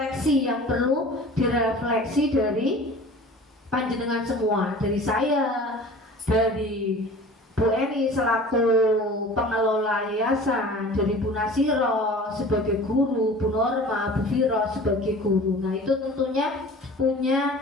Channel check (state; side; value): normal; both; correlation 0.42